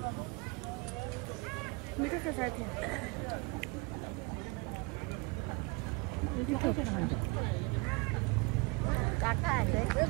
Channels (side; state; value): left; quieter; 27.3 dB